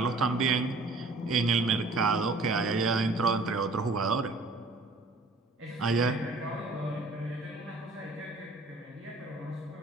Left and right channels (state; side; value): quieter; left; 3.2 dB